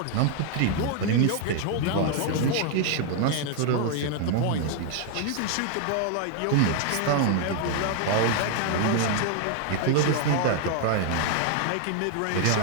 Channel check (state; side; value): different; both; correlation 0.00